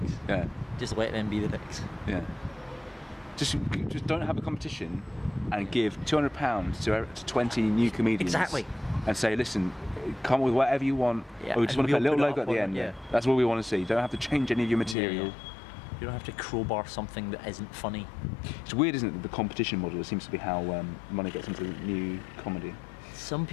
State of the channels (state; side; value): drops out; right; at 15.0 s